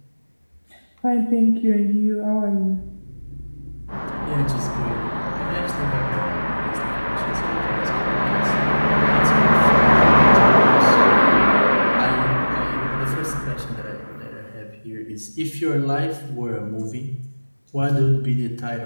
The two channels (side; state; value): both; inverted; correlation -1.00